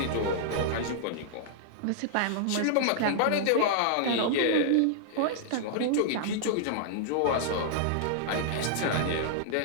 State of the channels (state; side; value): different; both; correlation -0.01